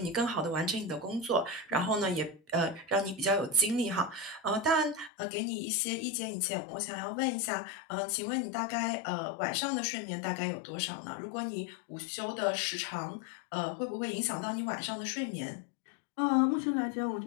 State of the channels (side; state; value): right; drops out; at 5.1 s